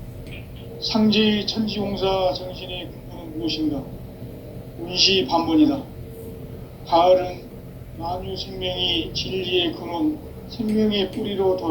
상제의 천지공사 정신의 근본은 무엇인가? 운시반본이다. 가을은 만유 생명이 진리의 근원, 생명의 뿌리로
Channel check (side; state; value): both; identical; correlation 1.00